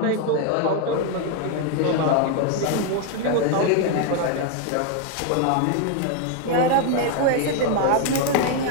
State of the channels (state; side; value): different; both; correlation 0.01